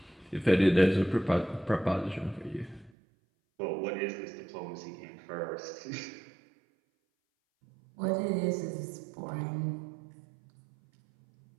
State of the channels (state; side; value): drops out; left; at 2.9 s